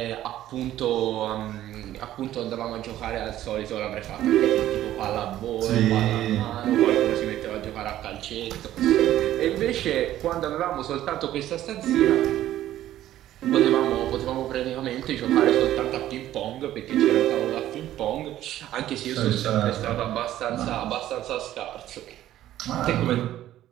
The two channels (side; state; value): left; quieter; 13.1 dB